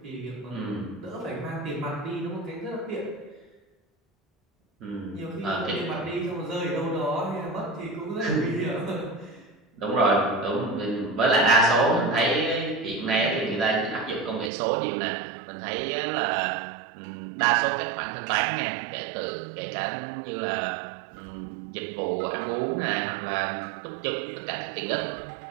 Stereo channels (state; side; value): drops out; left; at 14.5 s